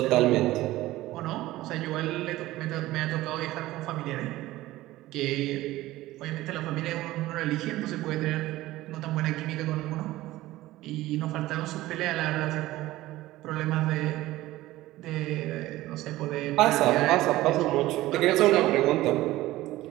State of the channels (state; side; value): quieter; left; 16.8 dB